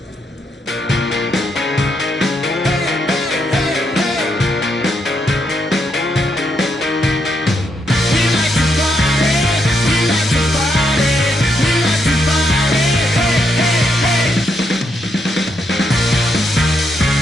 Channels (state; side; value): normal; both; correlation 0.78